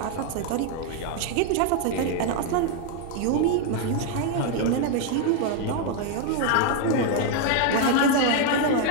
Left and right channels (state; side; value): different; both; correlation 0.01